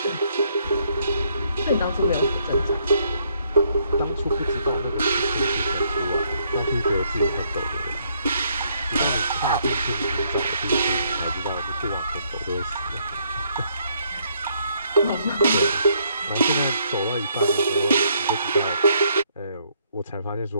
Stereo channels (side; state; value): both; inverted; correlation -0.70